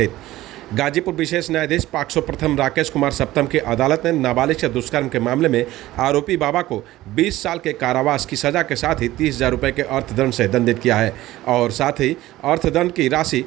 गाजीपुर विशेष न्यायाधीश पॉक्सो प्रथम राकेश कुमार सप्तम की अदालत ने नाबालिग से दुष्कर्म के मामले में आरोपी बाबा को 20 साल के कारावास की सजा के साथ ही 30,000 रुपये के अर्थदंड से दंडित किया है और साथ ही अर्थदंड की राशि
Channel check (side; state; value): left; quieter; 16.2 dB